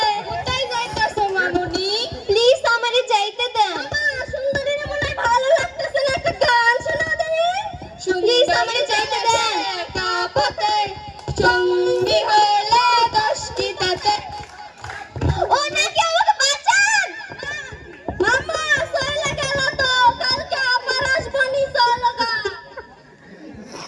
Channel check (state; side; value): identical; both; correlation 1.00